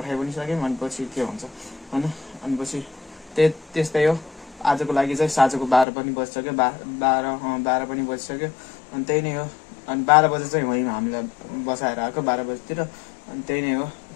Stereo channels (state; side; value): drops out; right; at 5.9 s